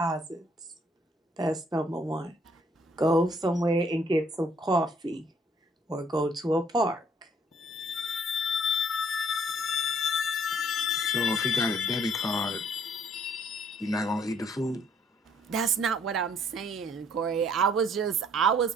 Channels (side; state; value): both; normal; correlation 0.63